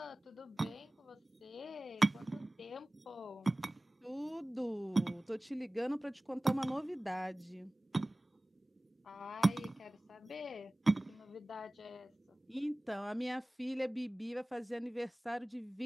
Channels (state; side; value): normal; both; correlation 0.98